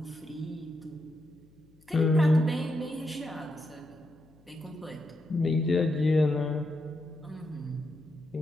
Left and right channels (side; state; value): left; noise; hum, 30 dB below the sound